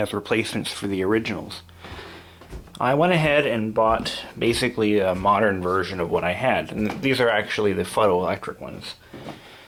replacements for the originals. I went ahead and bought basically a modern version of what I had, and these are actually the photoelectric ones.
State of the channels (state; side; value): identical; both; correlation 1.00